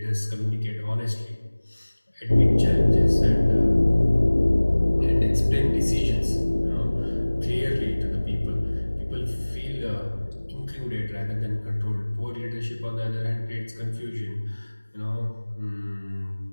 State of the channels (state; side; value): inverted; both; correlation -1.00